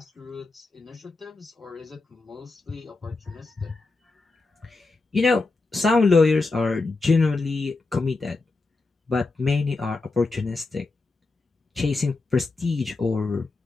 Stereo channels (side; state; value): right; quieter; 3.6 dB